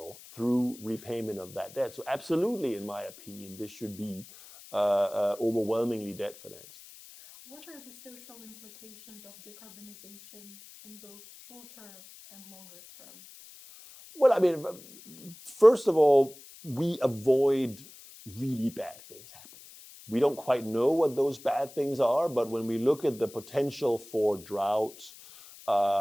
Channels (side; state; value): left; noise; hiss, 20 dB below the sound